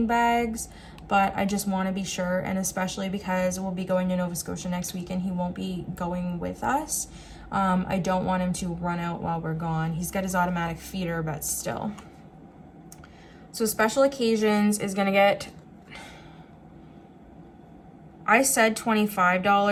bags, but I just want to be sure, and especially because we'll be going to Nova Scotia next week and he won't be going with us. I don't want him to run out while we're gone. He's got his automatic feeder, but still. So special occasions is gonna get, I said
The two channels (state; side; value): identical; both; correlation 1.00